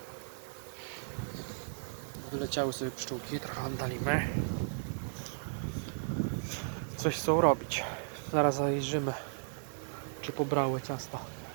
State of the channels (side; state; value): left; silent; digital silence